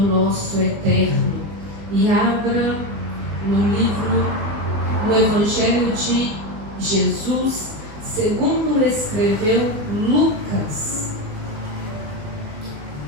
nosso Eterno e abra no Evangelho de Jesus, segundo escreveu Lucas.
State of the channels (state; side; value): late; left; 19 ms